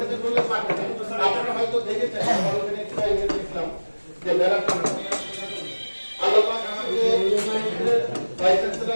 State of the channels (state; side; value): inverted; both; correlation -1.00